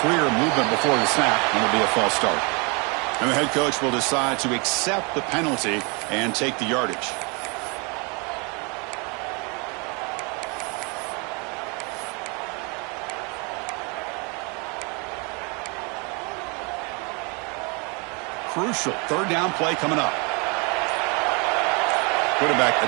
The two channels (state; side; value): quieter; left; 31.7 dB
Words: Clear movement before the snap, and it'll be a false start. And the head coach will decide to accept the penalty and take the yardage. Crucial third down play coming up. Quarterback